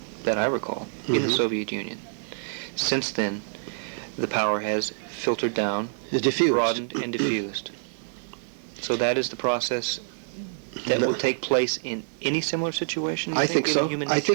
that I recall in the Soviet Union. Since then, the power has filtered down, broadened, and diffused. So that is the process that will take place in any similar situation. I think so. I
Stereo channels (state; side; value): silent; left; 61 dB below the other